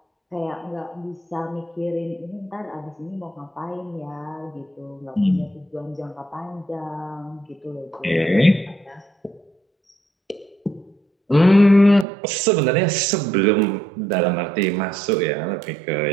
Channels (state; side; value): drops out; left; at 12.1 s